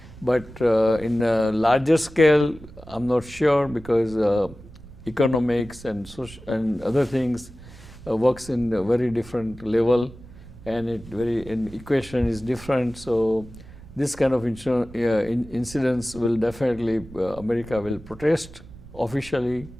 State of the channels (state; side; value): noise; right; rumble, 18 dB below the sound